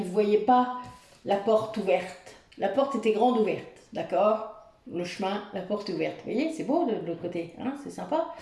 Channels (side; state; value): both; identical; correlation 1.00